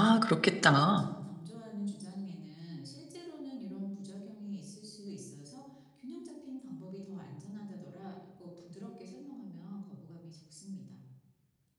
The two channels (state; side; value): identical; both; correlation 1.00